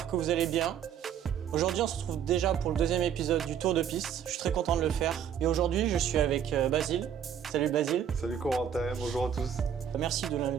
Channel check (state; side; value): quieter; left; 8.8 dB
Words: que vous allez bien. Aujourd'hui, on se retrouve déjà pour le deuxième épisode du Tour de Piste. Je suis très content de le faire. Et aujourd'hui, je suis avec Basile. Salut Basile. Salut Corentin, bonjour à tous. Merci